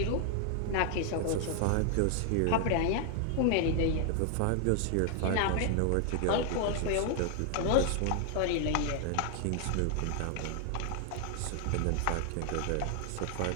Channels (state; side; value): different; both; correlation 0.00